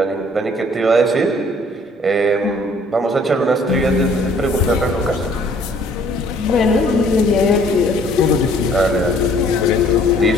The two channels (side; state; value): both; normal; correlation 0.58